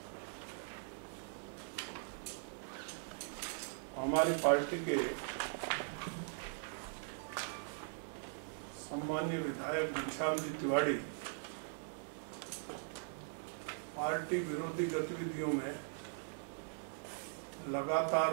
हमारी पार्टी के सम्मानीय विधायक घनश्याम जी तिवाड़ी पार्टी विरोधी गतिविधियों में लगातार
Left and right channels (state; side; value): silent; left; digital silence